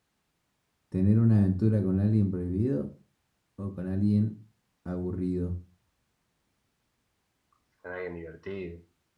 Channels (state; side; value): identical; both; correlation 1.00